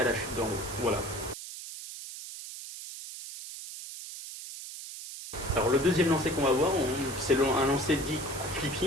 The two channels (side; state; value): right; noise; hiss, 11 dB below the sound